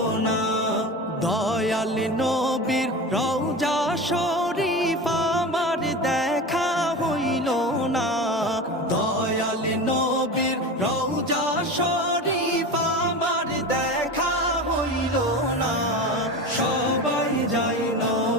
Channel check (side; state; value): both; normal; correlation 0.28